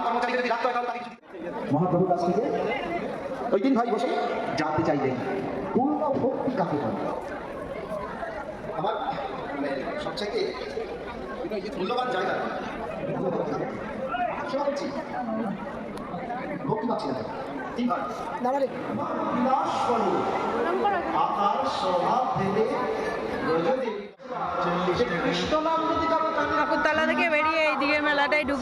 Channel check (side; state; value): both; identical; correlation 1.00